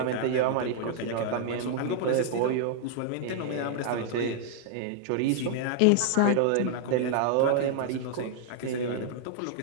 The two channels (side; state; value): both; different; correlation -0.01